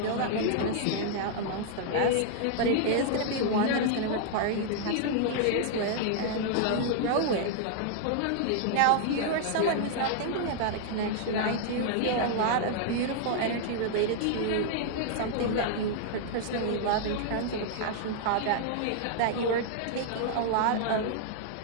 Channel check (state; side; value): different; both; correlation -0.01